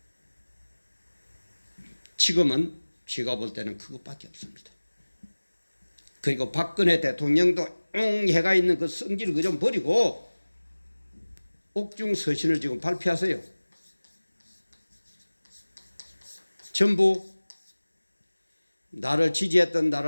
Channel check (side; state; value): both; inverted; correlation -1.00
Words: 지금은 제가 볼 때는 그것밖에 없습니다. 그리고 박근혜 대통령도 해가 있는 그 성질을 그 좀 버리고 옥중 서신을 지금 발표하세요. 전부 나를 지지했던